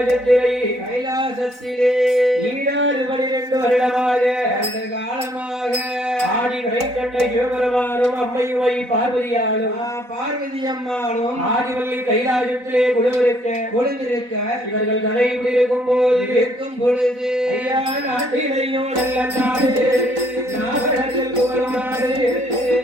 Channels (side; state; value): left; late; 4.0 ms